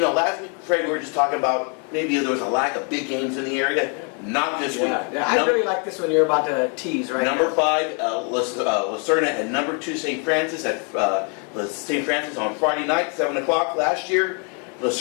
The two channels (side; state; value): right; quieter; 38.2 dB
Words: week, Fred, we were just talking about maybe there was a lack of big games in the area. Not this week. Yeah, I really like this one you're about to tease, right? Number 5, Serna, and number 2, St. Francis at St. Francis on Friday night, 7 o'clock last year.